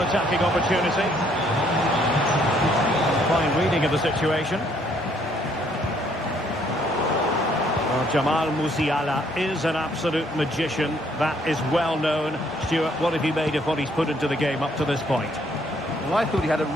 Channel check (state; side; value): normal; both; correlation 0.66